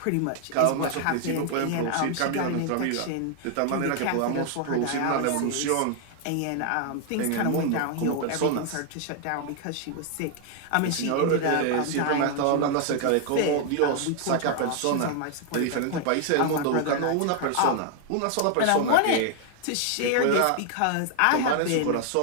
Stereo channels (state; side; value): different; both; correlation 0.00